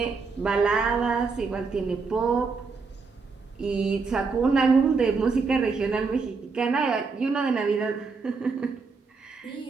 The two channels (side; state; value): left; quieter; 4.7 dB